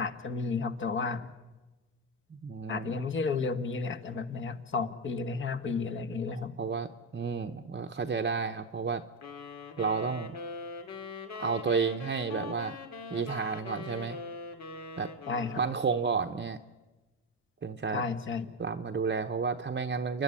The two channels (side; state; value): both; normal; correlation 0.09